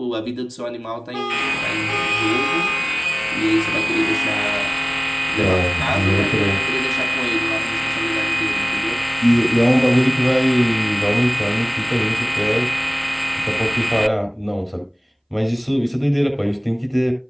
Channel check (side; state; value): both; identical; correlation 1.00